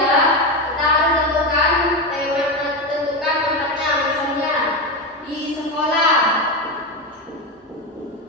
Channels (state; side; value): normal; both; correlation 0.15